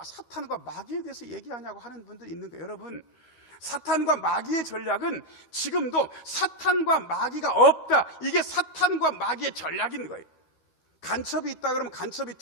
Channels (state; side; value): late; right; 13 ms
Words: 사탄과 마귀에 대해서 얘기하냐고 하는 분들이 있는 거예요. 여러분, 사탄과 마귀의 전략은 지금도 사탄과 마귀가 없다. 이게 사탄과 마귀의 전략인 거예요. 간첩이 있다 그러면 간첩이